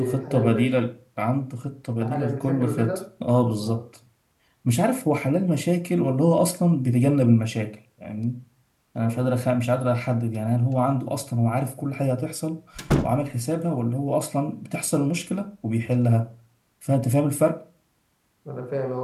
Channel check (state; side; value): identical; both; correlation 1.00